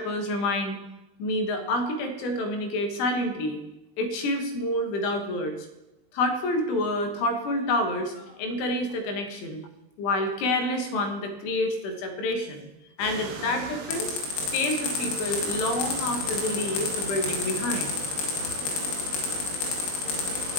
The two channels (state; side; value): late; right; 20 ms